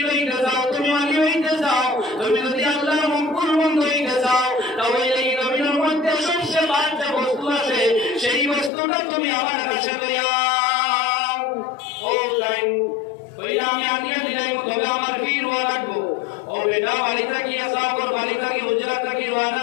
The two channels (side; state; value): right; drops out; at 8.7 s